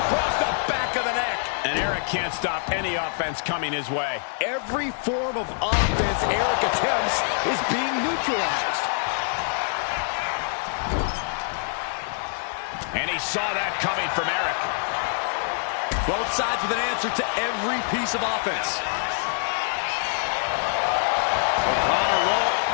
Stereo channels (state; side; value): silent; right; 62 dB below the other